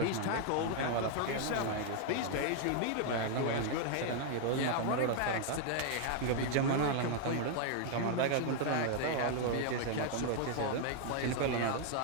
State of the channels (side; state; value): both; different; correlation 0.00